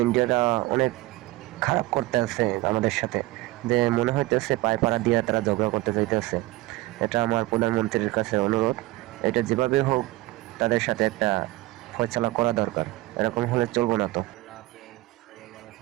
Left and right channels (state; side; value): quieter; left; 19.2 dB